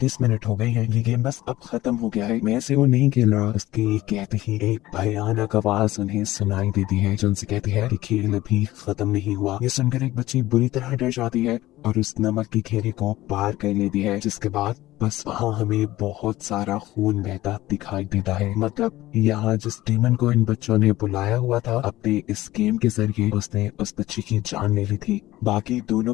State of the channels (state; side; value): quieter; right; 16.5 dB